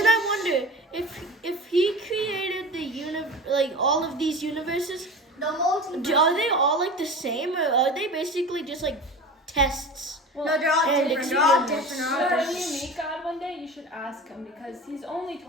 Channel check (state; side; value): normal; both; correlation 0.33